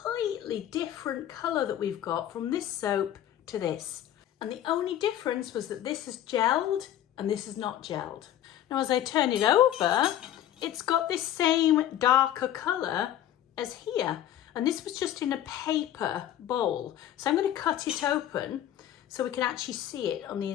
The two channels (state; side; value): quieter; right; 11.7 dB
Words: different colour that we've got from this soap to this. And the only difference was that this is gelled and this is not gelled. Now as I turn it over, it's got this same darker colour as here. And this was just in a paper bowl. So I'm going to cut it open so we can actually see it on the